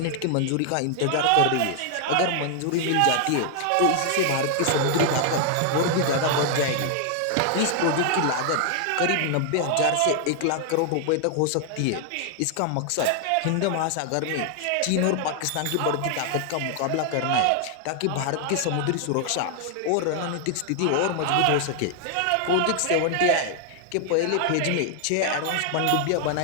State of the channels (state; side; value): different; both; correlation 0.00